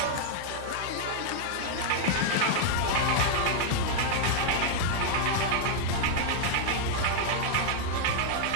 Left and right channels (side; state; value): both; different; correlation -0.01